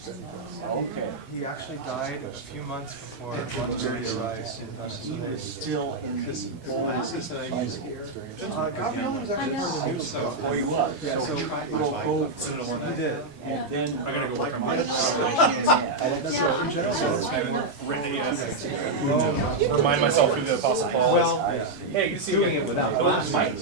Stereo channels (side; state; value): left; quieter; 3.1 dB